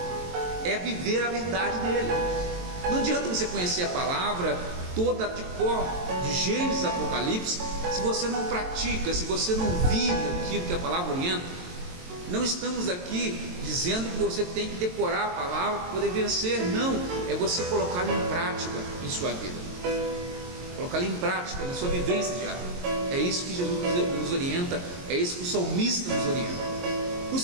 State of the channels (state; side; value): late; left; 22 ms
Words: é viver a verdade dele. Não adianta você conhecer a palavra toda de cor, de Gênesis a Apocalipse, se você não pratica, se você não vive aquilo que a palavra orienta. Não estamos aqui dizendo que você tem que decorar a palavra para poder vencer, não, é você colocá-la em prática em sua vida, colocá-la em prática na sua vivência diária. É isso que Jesus nos orienta, é isso que o salmista nos orienta. No